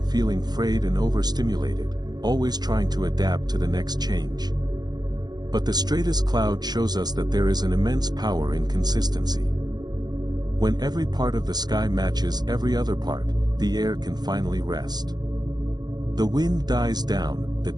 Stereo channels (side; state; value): left; late; 0.20 ms